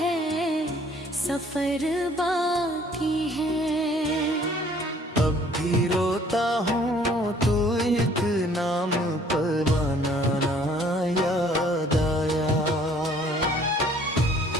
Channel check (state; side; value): normal; both; correlation 0.58